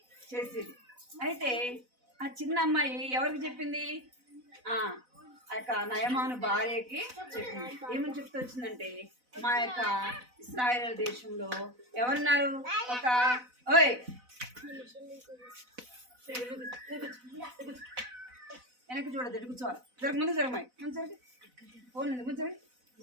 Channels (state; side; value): late; left; 4.0 ms